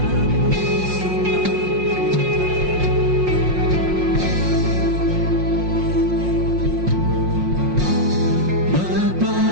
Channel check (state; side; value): late; left; 5.6 ms